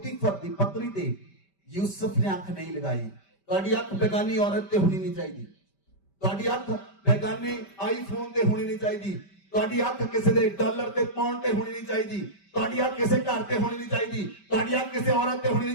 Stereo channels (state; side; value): late; right; 5.1 ms